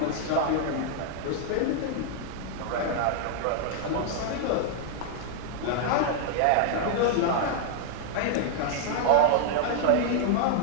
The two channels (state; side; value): different; both; correlation 0.00